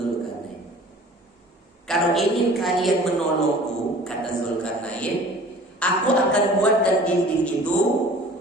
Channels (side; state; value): both; normal; correlation 0.47